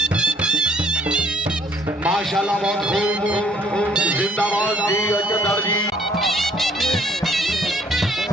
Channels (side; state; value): both; normal; correlation 0.61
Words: माशाल्लाह बहुत खूब जिंदाबाद जी Ajdar ji.